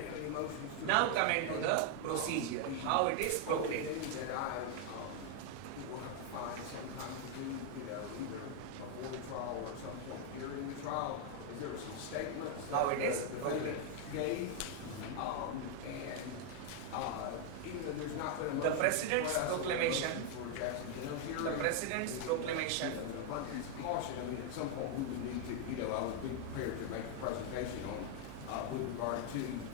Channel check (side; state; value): both; different; correlation 0.00